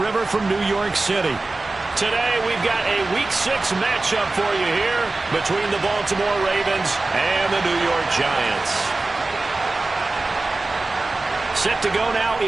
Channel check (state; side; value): quieter; left; 3.3 dB